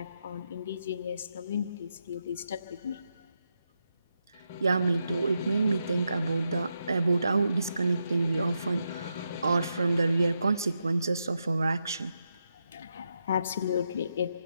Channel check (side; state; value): both; inverted; correlation -0.84